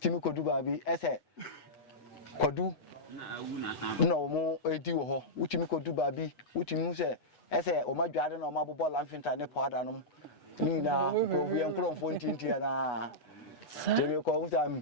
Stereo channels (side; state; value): right; late; 8.2 ms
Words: ko duba bi ese kwadu na wo mo edi wo ho otimi ko duba bi otimi se ese o ma dwade na o ma bobo lamfinta ne powder no ni na ko wi enkromfo ntintia na temi ko utam